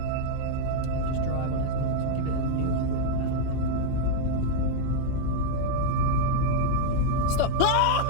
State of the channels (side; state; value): both; different; correlation 0.00